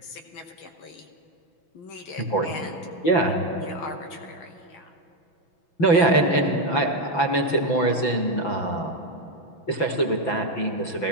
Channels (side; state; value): right; late; 6.0 ms